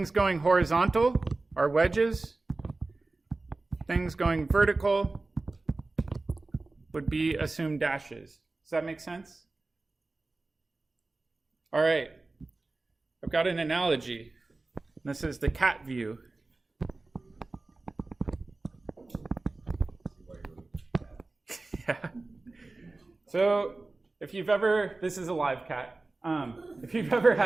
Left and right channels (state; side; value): quieter; left; 3.3 dB